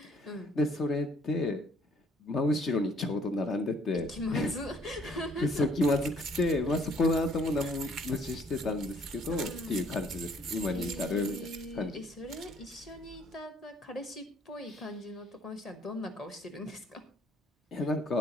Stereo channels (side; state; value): both; normal; correlation 0.62